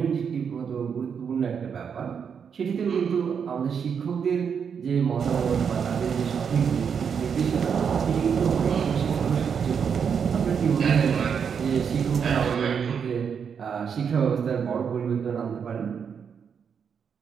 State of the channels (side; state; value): left; quieter; 6.9 dB